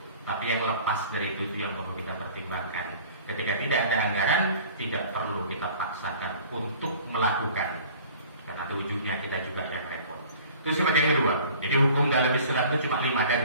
Tapi yang lepas dari itu yang perlu kita pertimbangkan. Ketika tidak ada anggaran, tidak perlu kita paksakan untuk melakukan, karena ujungnya kita juga yang repot. Itu seperti yang kedua. Jadi hukum dalam Islam itu cuma 5, dan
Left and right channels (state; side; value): inverted; both; correlation -0.48